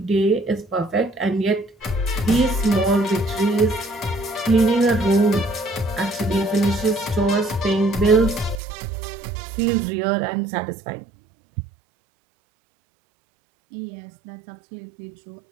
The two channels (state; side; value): drops out; left; at 8.6 s